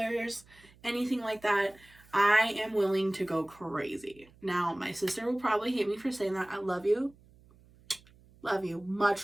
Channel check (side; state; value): right; noise; hum, 27 dB below the sound